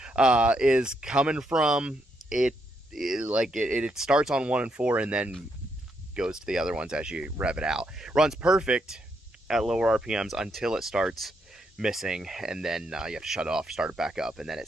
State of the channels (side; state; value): both; normal; correlation 0.78